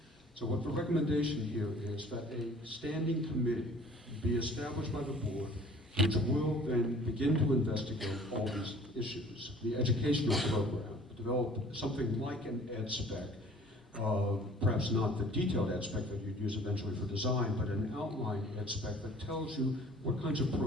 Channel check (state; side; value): normal; both; correlation 0.51